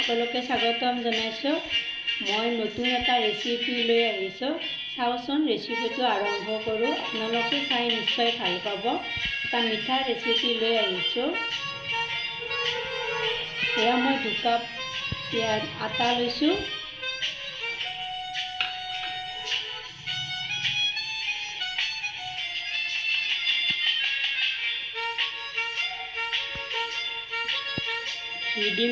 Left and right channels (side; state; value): both; identical; correlation 1.00